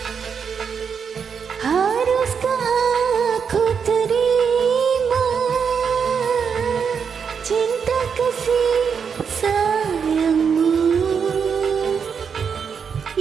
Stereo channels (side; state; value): left; quieter; 6.6 dB